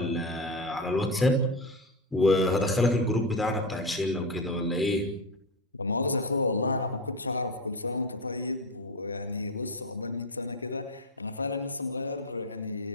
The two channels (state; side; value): normal; both; correlation 0.18